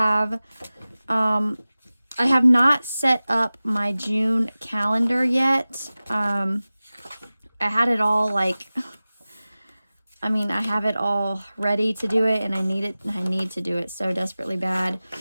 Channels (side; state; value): both; inverted; correlation -0.97